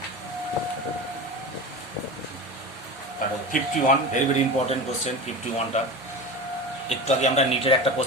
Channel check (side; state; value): both; normal; correlation 0.28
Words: 51 very very important question 51টা। একটু আগে আমরা নিটের একটা